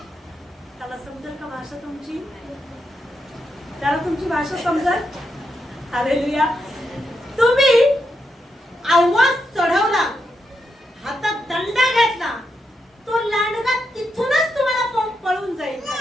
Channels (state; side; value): normal; both; correlation 0.83